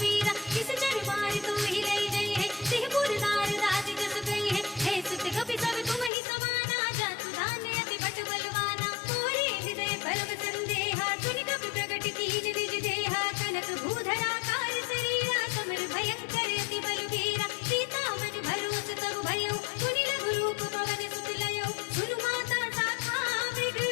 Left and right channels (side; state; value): right; drops out; at 6.1 s